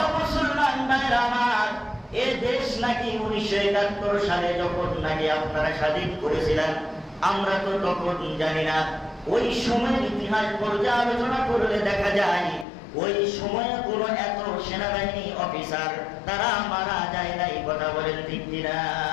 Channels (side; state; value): right; drops out; at 12.7 s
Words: মুসলমান ভাইরা আমার, এ দেশ নাকি 1971 সালে যখন নাকি আপনারা স্বাধীন করেছিলেন, আমরা তো তখন জানি না। ওই সময়ের ইতিহাস পর্যালোচনা করলে দেখা যায় ওই সময়ে কোন এত সেনাবাহিনী অফিসার তারা মারা যায় নাই। কথা বলেন ঠিক কিনা?